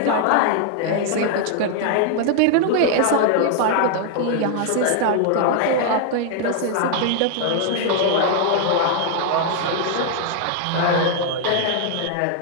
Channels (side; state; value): both; different; correlation 0.00